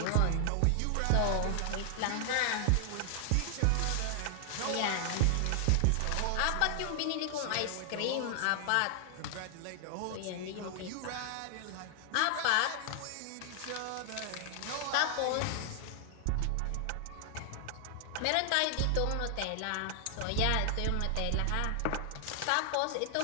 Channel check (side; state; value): both; different; correlation 0.00